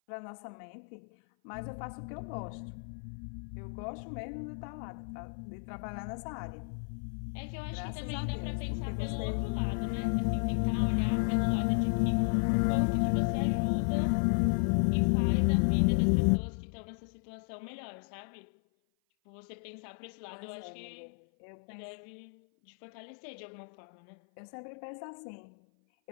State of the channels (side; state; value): right; silent; 55 dB below the other